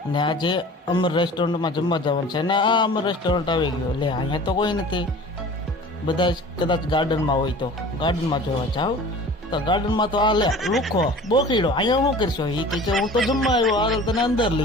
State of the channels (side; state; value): both; normal; correlation 0.42